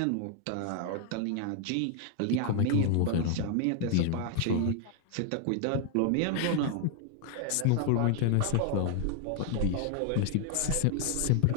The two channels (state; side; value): different; both; correlation 0.00